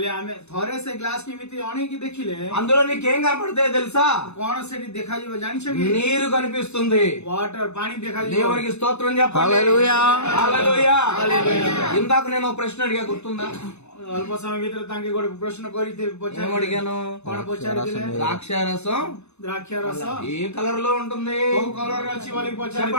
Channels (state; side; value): late; right; 0.81 ms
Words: ଆମେ ଥରେ ସେ ଗ୍ଲାସ କେମିତି ଅଣେଇକି ଦେଖିଲେ అందులో నీకేం కనపడతాయో తెలుసా? କଣ ସେଠି ଦେଖାଯିବ ଜାଣିଛ କି నీరు కనిపిస్తుంది. వాటర్ ପାଣି ଦେଖାଯିବ దేవునికి స్తోత్రం చెప్పండి. హల్లెలూయా. హల్లెలూయా. ఇందాక నేను ఒక ప్రశ్న అడిగా, గుర్తుందా? ଅଳ୍ପ ସମୟ ଭିତରେ ତାଙ୍କେ ଗୋଟେ ପ୍ରଶ୍ନ କରିଥିବେ ఏం అడిగాను? କଣ ପଚାରିଥିଲେ ద్రాక్ష రసం ଦ୍ରାକ୍ଷ ରସ ఏ కలర్ లో ఉంటుంది? କୋଉ କଲର ଅଛି ବୋଲିକି